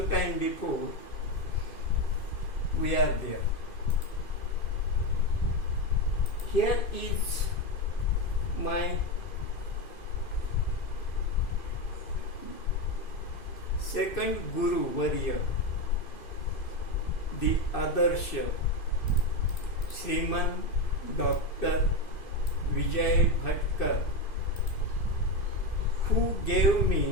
before we are there. Here is my second Guru Varya, the Adarsha, Sriman Dr. Vijay Bhatkar, who gave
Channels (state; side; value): late; right; 2.4 ms